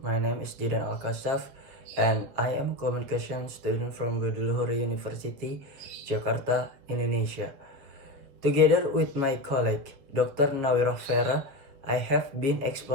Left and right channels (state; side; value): late; left; 7.5 ms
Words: name is Didan Alkasaf and I am a communication student from Budi University, Jakarta, Indonesia. Together with my colleague, Dr. Nawira Vera, I have been